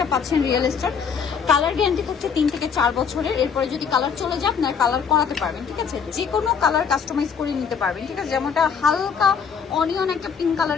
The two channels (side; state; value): right; quieter; 6.7 dB